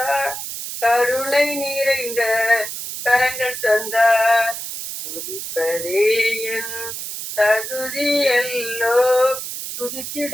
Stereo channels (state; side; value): noise; right; hiss, 7 dB below the sound